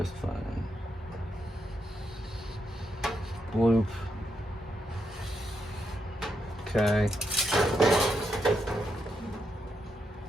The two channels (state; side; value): normal; both; correlation 0.82